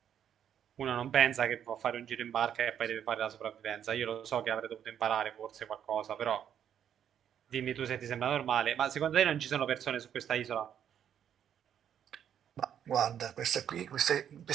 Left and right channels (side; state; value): left; quieter; 9.3 dB